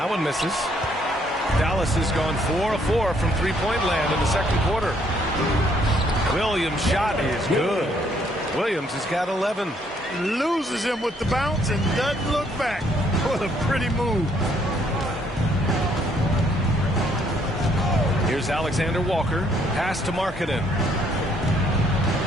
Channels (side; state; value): both; normal; correlation 0.67